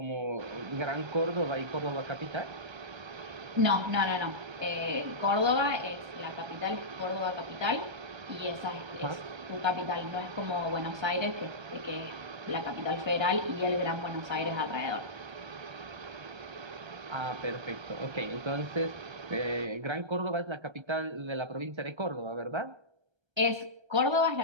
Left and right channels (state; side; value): late; left; 1.3 ms